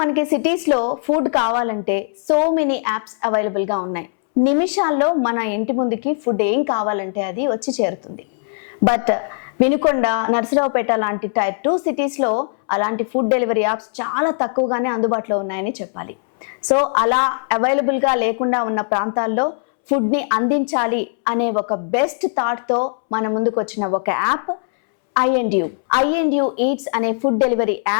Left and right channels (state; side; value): silent; right; 66 dB below the other